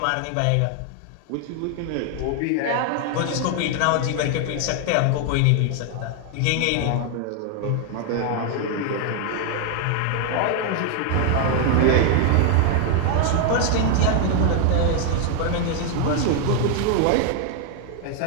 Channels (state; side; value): different; both; correlation 0.00